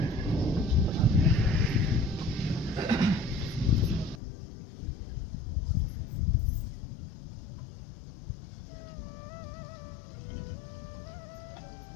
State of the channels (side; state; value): right; drops out; at 4.2 s